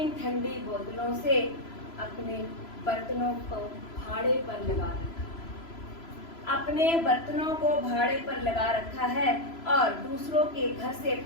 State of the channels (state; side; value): late; right; 3.0 ms